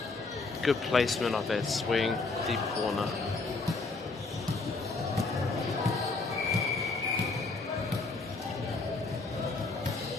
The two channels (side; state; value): right; quieter; 3.7 dB